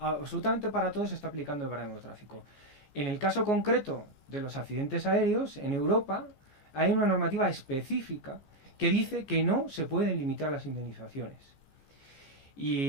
para todo se está aplicando el baremo de tráfico. En el caso concreto de los accidentes aéreos, en Europa hay una normativa específica que dice que no se pueden limitar las indemnizaciones.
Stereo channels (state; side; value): late; right; 14 ms